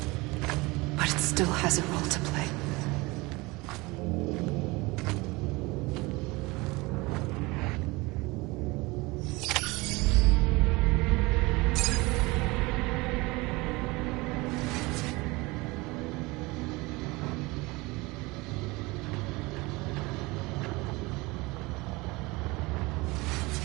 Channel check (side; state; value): left; quieter; 23.3 dB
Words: But it still has a role to play.